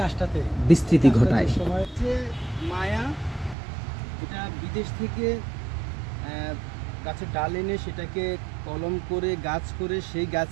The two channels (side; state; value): left; drops out; at 3.6 s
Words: বিস্তৃতি ঘটায়। মায়া এটা বিদেশ থেকে গাছের ডাল এনে সেটাকে কলম করে গাছ করে সেই